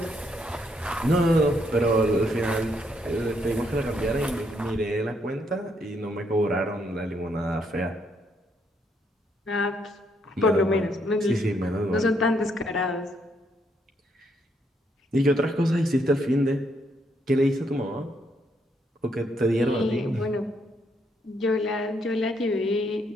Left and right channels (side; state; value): both; normal; correlation 0.74